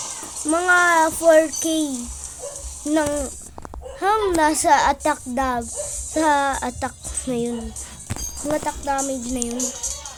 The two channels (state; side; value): identical; both; correlation 1.00